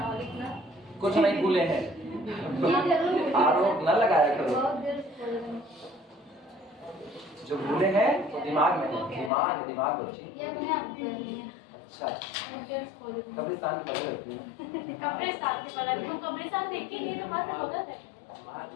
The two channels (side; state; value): right; drops out; at 9.3 s